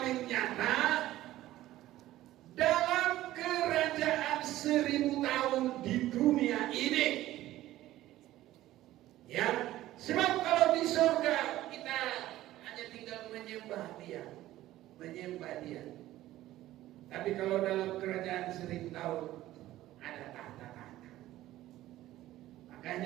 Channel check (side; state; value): left; quieter; 15.0 dB